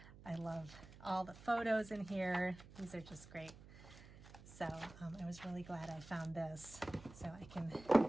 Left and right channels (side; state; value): right; noise; hum, 18 dB below the sound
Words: I love all the photos in here. These are just great. So I was really glad I found this, so I can